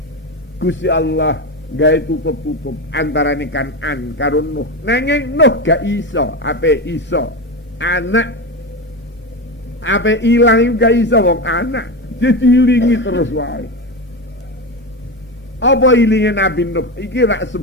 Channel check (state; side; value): normal; both; correlation 0.18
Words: Gusti Allah gawe tutup-tutup antarane Kanan karo Nuh. Nanging Nuh gak iso, ape iso anak ape ilang gak iso wong anak. Jadi ilingi terus wae. Apa ilinge Nabi Nuh? Iki rak